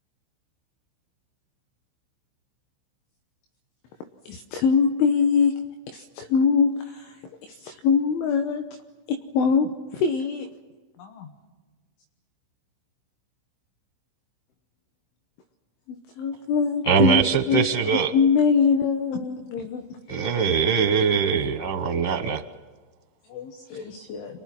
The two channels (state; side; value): late; right; 16 ms